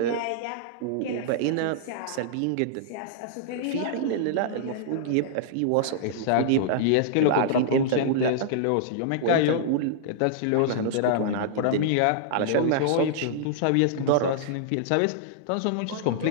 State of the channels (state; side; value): different; both; correlation -0.02